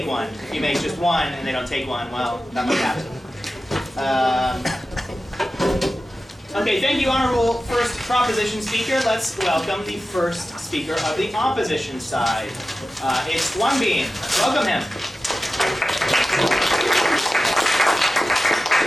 one. If you make just one and they don't take one, well, that might happen. Okay, thank you, honorable first proposition speaker. Let's welcome the first speaker of the opposition side. It's Won Bean. Welcome him.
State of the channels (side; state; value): both; normal; correlation 0.94